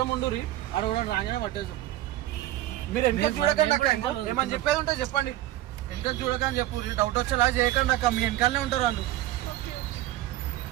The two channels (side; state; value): left; quieter; 14.8 dB